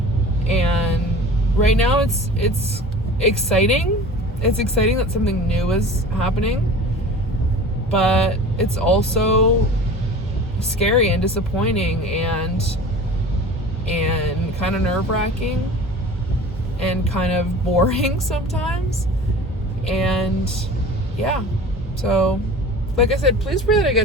And right now it's exciting. It's exciting that something new is happening, but it's also scary and disappointing and kind of nerve-wracking and kind of boring sometimes. And yeah, so like I said, please pray that I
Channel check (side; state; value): both; normal; correlation 0.40